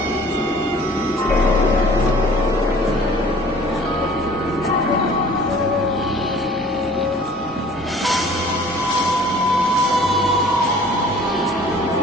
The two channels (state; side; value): normal; both; correlation 0.50